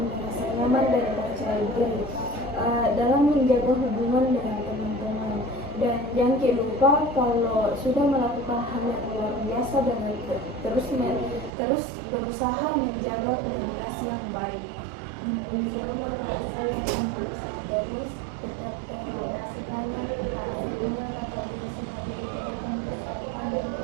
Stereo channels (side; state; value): left; drops out; at 11.5 s